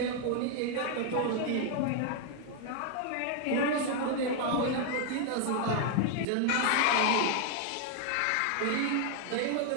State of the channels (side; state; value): both; different; correlation 0.00